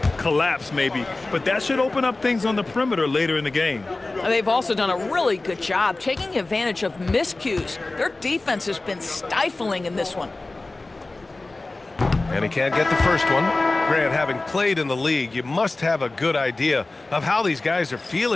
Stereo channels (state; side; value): quieter; right; 3.1 dB